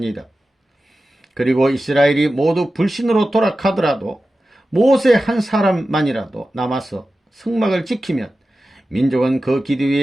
그리고 이스라엘이 모두 불신으로 돌아가더라도 모세 한 사람만이라도 남아서 성막을 지키면 민족은 그 기대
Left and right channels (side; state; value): both; normal; correlation 0.94